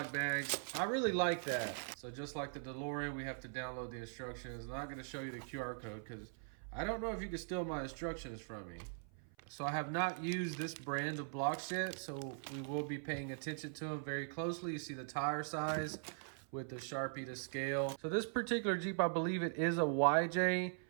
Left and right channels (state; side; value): silent; left; 50 dB below the other